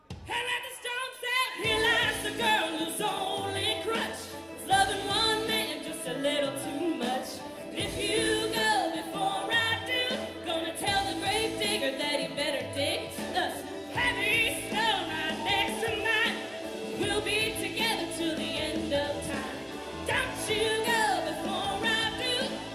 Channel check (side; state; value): both; identical; correlation 1.00